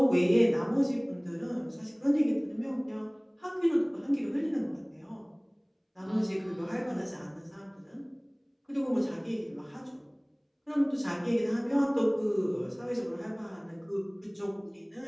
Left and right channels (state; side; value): identical; both; correlation 1.00